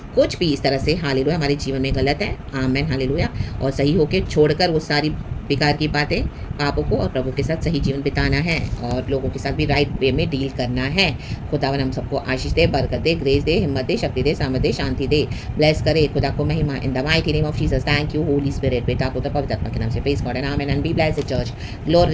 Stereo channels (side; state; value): both; identical; correlation 1.00